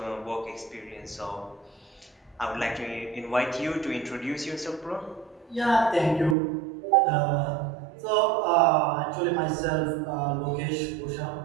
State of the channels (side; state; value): left; drops out; at 6.4 s